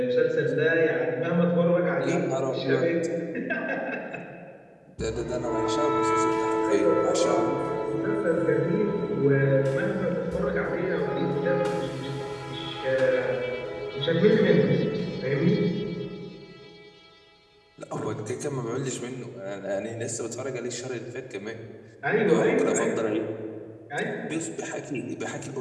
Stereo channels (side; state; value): both; identical; correlation 1.00